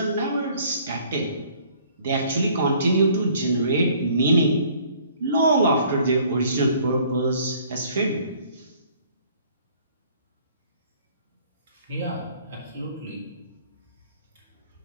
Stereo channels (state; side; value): inverted; both; correlation -0.57